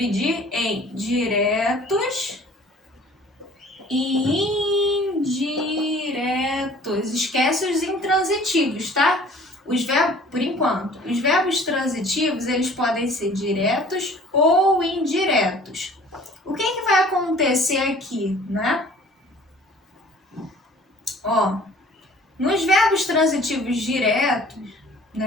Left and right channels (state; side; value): normal; both; correlation 0.50